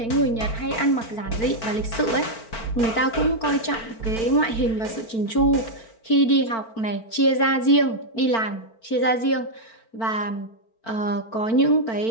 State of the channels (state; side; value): late; right; 4.4 ms